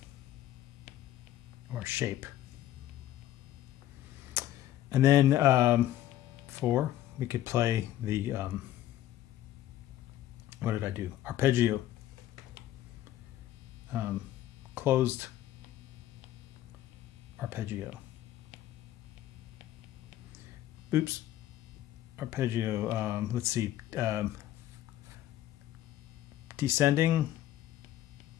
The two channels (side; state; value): right; quieter; 13.3 dB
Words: or shape. And then 4, we could play the, what did I do? Arpeggio. Closed arpeggio. Oops. Arpeggio, let's see. Descending